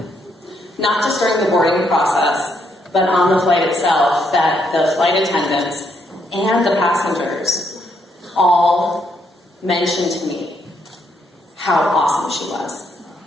not just during the boarding process, but on the flight itself, that the flight attendants and the passengers all mentioned to me how awesome she was.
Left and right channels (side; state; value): both; normal; correlation 0.75